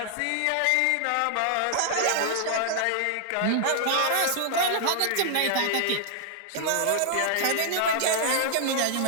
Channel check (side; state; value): both; different; correlation -0.01